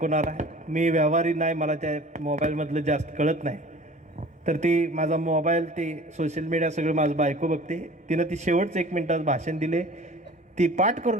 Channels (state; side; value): normal; both; correlation 0.44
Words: आहे. मी व्यवहारी नाही, मला त्या मोबाईलमधलं जास्त कळत नाही, तर ती माझा मोबाईल ते सोशल मीडिया सगळं माझं बायको बघते. तिनं ती शेवटचं 1 मिनिटात भाषण दिले, ती पाठ